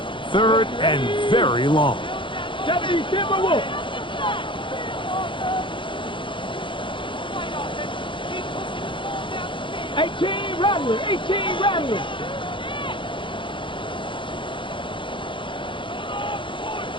3rd and very long. 70, Timberwolf. 18, Rattler. 18, Rattler.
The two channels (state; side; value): late; right; 0.24 ms